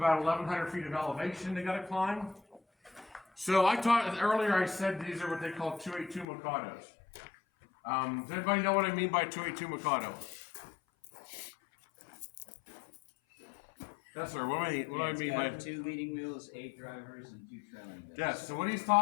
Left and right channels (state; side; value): drops out; right; at 6.2 s